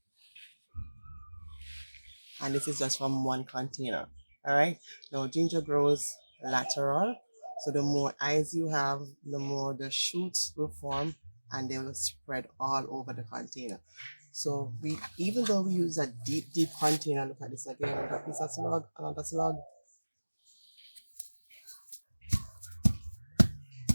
And this is just from one container. All right. Now ginger grows lateral. So the more eyes you have, the more the shoots will form and they will spread all over the container. So we, even though we use a deep container, look at this again, another piece of slug, another slug.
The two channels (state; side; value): inverted; both; correlation -1.00